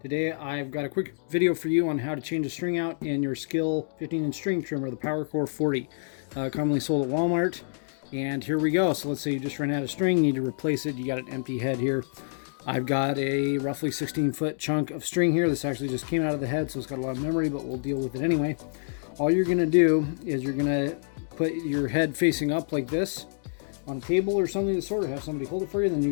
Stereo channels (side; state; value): right; silent; digital silence